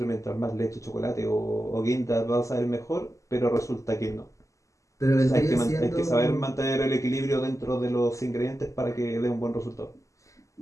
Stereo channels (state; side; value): late; right; 0.16 ms